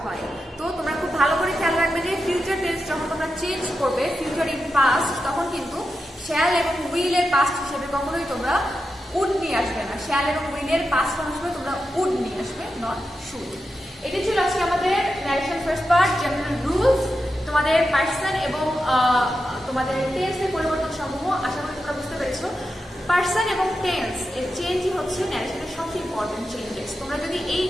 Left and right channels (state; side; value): normal; both; correlation 0.89